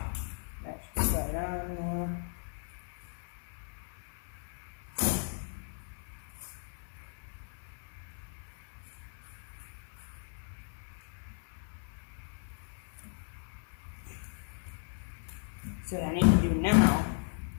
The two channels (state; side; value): silent; right; 54 dB below the other